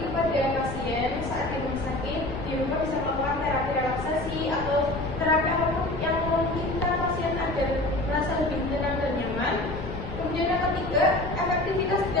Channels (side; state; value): left; noise; rumble, 10 dB below the sound